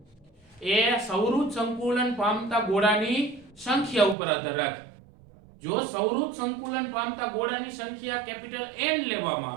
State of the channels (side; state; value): left; drops out; at 4.2 s